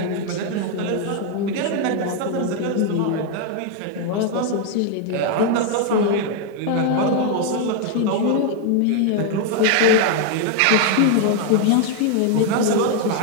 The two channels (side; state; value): both; different; correlation 0.00